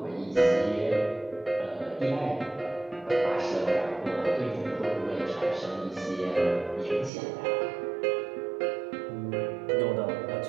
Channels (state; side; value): drops out; left; at 7.1 s